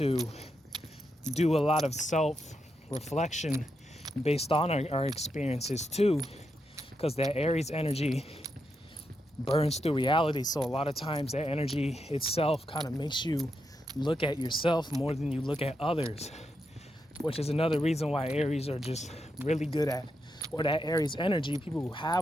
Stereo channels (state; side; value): normal; both; correlation 0.84